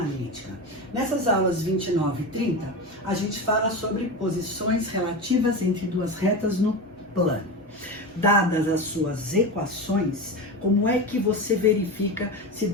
Nessas aulas 29 e 30, a gente fala sobre posições relativas entre duas retas no plano. Dadas as suas equações, como é que você verifica se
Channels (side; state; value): both; normal; correlation 0.23